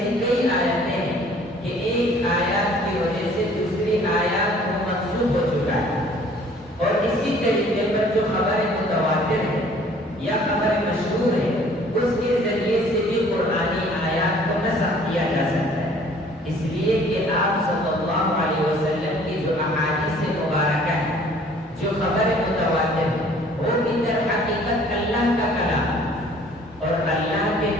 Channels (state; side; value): normal; both; correlation 0.55